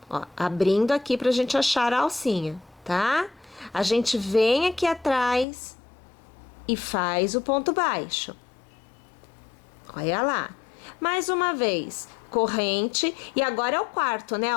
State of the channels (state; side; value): drops out; right; at 5.5 s